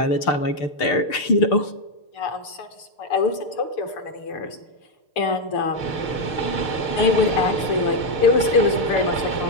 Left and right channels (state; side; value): late; right; 6.6 ms